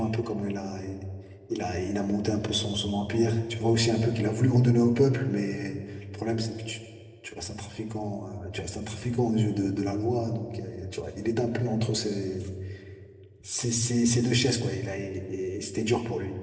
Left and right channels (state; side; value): identical; both; correlation 1.00